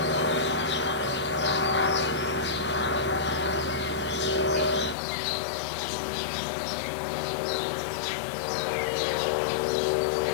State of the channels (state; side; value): drops out; right; at 5.0 s